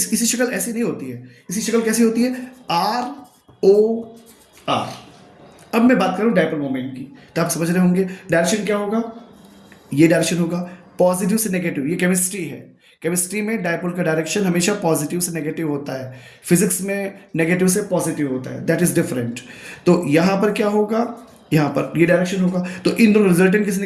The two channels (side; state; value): both; identical; correlation 1.00